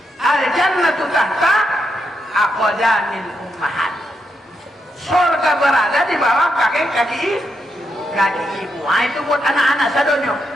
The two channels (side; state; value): both; normal; correlation 0.82